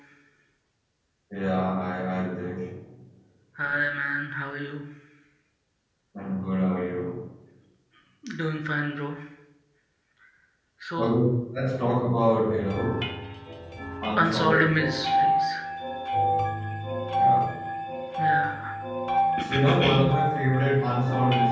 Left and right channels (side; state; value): both; identical; correlation 1.00